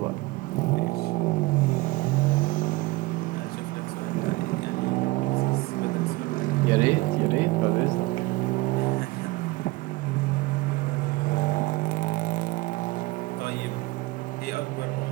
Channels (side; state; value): left; quieter; 21.6 dB